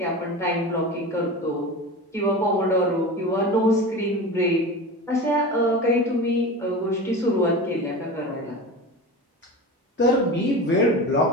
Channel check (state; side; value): normal; both; correlation 0.30